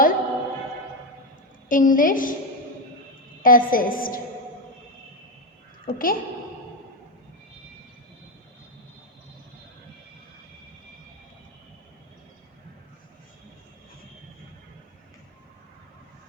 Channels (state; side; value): normal; both; correlation 0.08